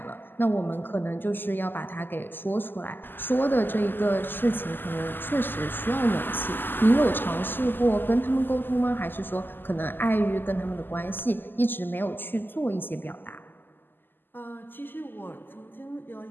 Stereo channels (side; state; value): right; late; 0.093 ms